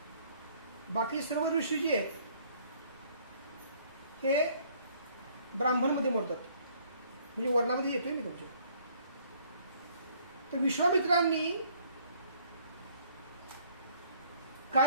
बाकी सर्व ऋषी जे आहेत हे ब्राह्मणमध्ये मोडतात, म्हणजे वर्णामध्ये येतोय मी तुमच्या। तर विश्वामित्रांनी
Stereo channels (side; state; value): both; inverted; correlation -0.60